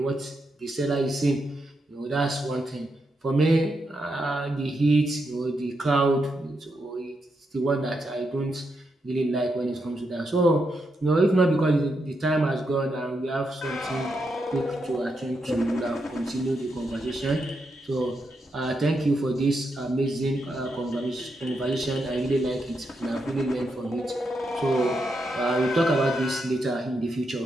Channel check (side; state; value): both; normal; correlation 0.83